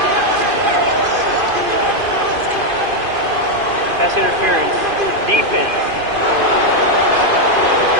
Pass interference. Defense.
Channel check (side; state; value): left; late; 2.5 ms